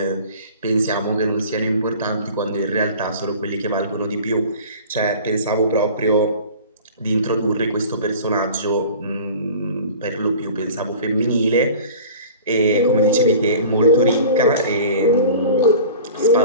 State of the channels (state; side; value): inverted; both; correlation -0.42